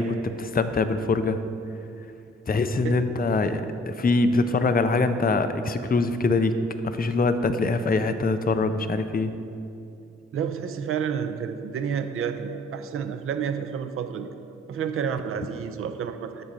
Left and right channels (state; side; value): normal; both; correlation 0.57